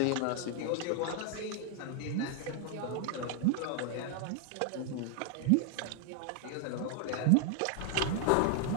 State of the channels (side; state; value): both; different; correlation 0.00